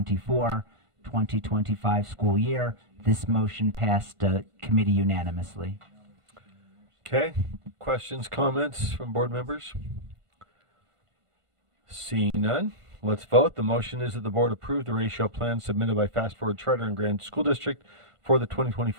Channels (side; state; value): left; late; 1.5 ms